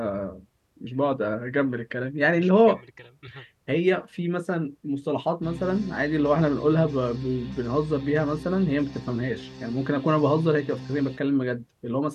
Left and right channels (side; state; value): both; identical; correlation 1.00